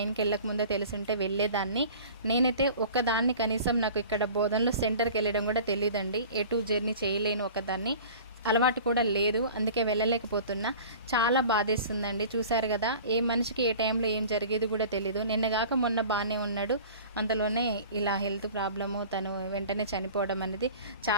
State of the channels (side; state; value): both; inverted; correlation -0.42